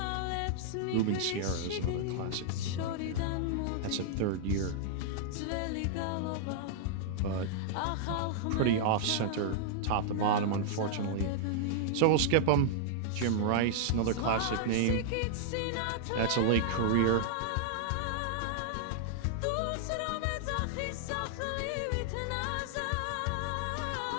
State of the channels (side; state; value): both; different; correlation -0.01